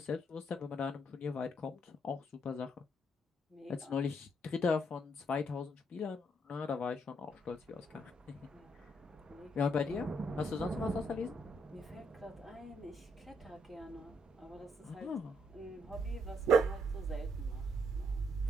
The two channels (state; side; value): normal; both; correlation 0.73